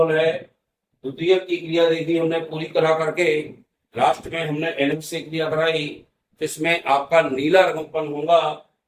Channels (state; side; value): identical; both; correlation 1.00